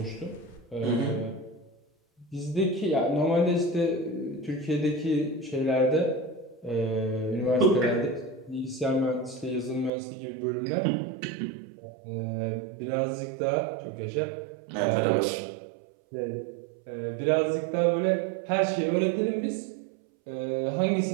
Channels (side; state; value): left; drops out; at 9.9 s